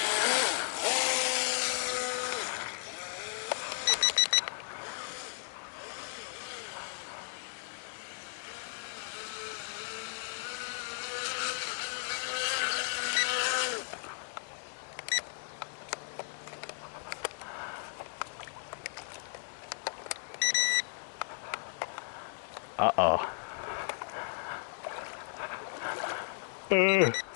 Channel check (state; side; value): silent; right; digital silence